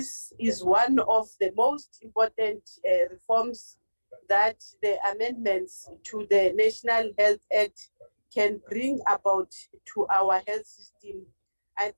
is one of the most important reforms that the amendments to the National Health Act can bring about to our health system. I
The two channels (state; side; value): inverted; both; correlation -1.00